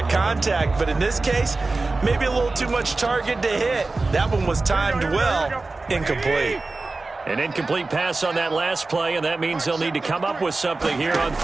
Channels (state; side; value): quieter; left; 3.5 dB